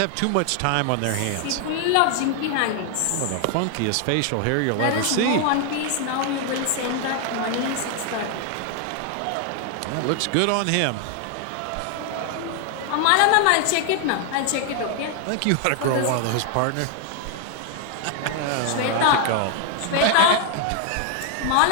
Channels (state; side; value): different; both; correlation 0.00